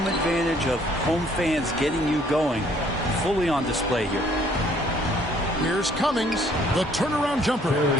advantage of home fans getting you going fully on display here. Here's Cummings, the turnaround jumper.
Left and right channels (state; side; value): normal; both; correlation 0.61